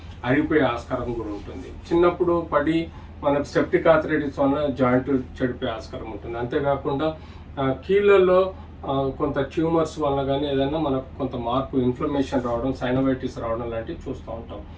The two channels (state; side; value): identical; both; correlation 1.00